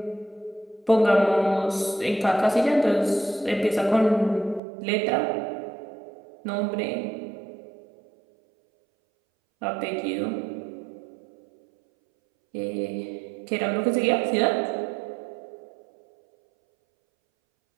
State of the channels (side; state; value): left; drops out; at 4.6 s